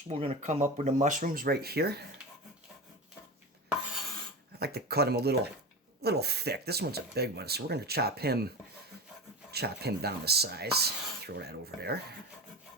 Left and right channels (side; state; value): both; normal; correlation 0.26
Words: We're gonna come up with the mushrooms right here. I like to cut them a little thick. This one's a big one, so we're gonna chop him down the size. Throw that over there.